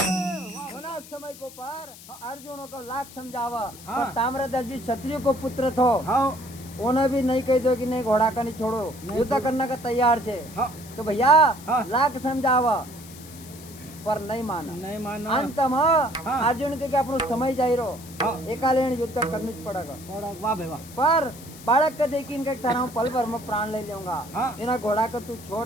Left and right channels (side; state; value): left; noise; hiss, 18 dB below the sound